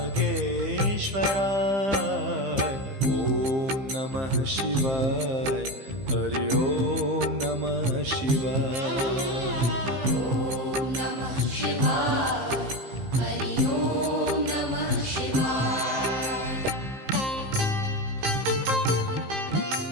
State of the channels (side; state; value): left; late; 15 ms